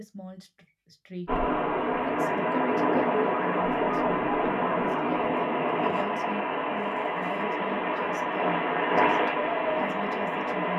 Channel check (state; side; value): identical; both; correlation 1.00